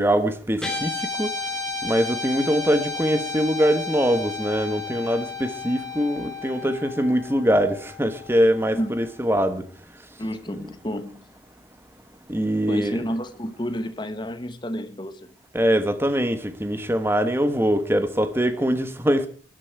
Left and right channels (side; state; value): both; normal; correlation 0.81